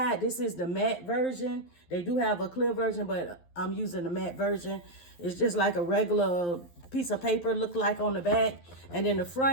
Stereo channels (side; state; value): right; late; 11 ms